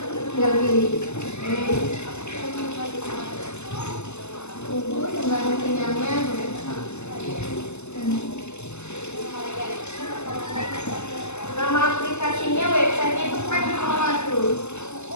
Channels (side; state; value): right; late; 0.82 ms